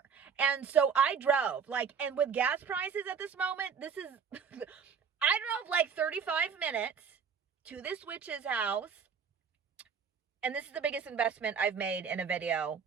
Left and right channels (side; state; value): left; quieter; 6.6 dB